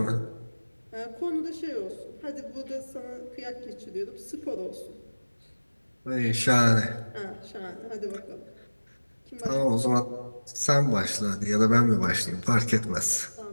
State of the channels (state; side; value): inverted; both; correlation -1.00